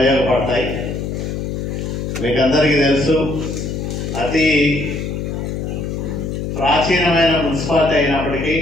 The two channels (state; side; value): noise; left; hum, 4 dB below the sound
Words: మీకందరికీ తెలుసు, అతి ప్రాచీనమైన మున్సిపాలిటీ అయినప్పటికీ